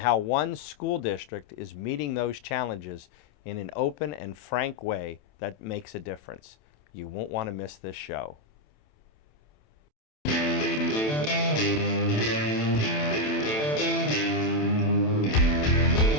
one school district is meeting those challenges in an open and frank way that makes a difference. You won't want to miss this show.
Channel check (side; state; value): right; late; 27 ms